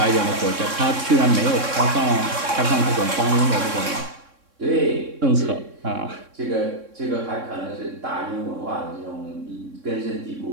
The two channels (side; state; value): left; late; 3.6 ms